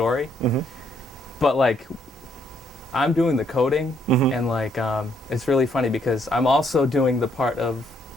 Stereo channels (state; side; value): normal; both; correlation 0.71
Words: but like, I'm doing the coding, and like, it's really funny because I'm also doing the part of,